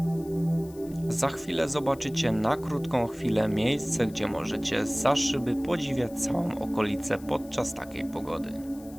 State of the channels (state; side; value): noise; left; hiss, 23 dB below the sound